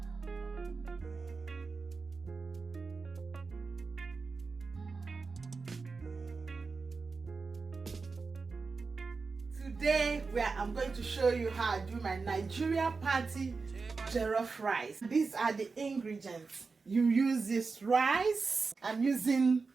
Today I'm going to show you how I do my Nigeria party jollof rice. These are the ingredients. You use this rice. I'm using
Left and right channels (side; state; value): left; quieter; 4.4 dB